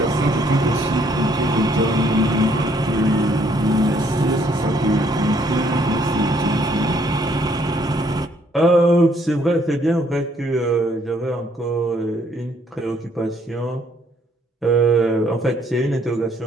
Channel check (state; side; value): normal; both; correlation 0.66